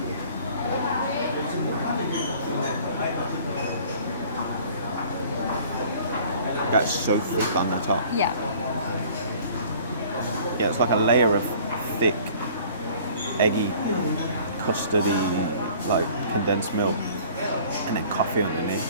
That's so thick on the top. Yeah. Yeah, it's like a layer of thick, eggy, custardy, like condensed milk, and then coffee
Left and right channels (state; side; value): inverted; both; correlation -0.50